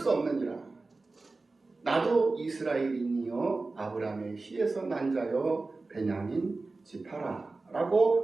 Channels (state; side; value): quieter; left; 3.6 dB